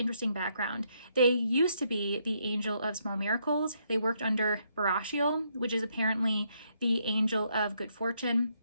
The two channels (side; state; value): both; inverted; correlation -0.75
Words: background. They used to be the angel of Small Miracles. They worked under Barashiel, which is apparently the angel of good fortune.